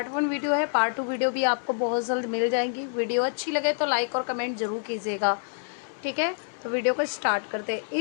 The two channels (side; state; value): right; silent; 60 dB below the other